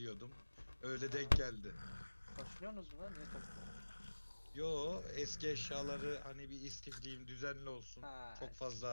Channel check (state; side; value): inverted; both; correlation -1.00